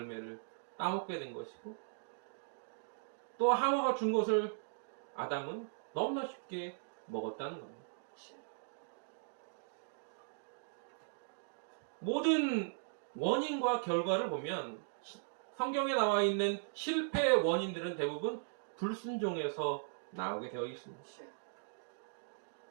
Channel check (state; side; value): silent; left; digital silence